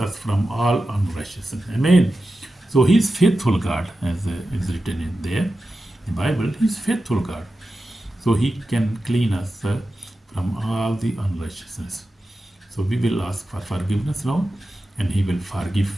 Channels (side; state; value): both; normal; correlation 0.92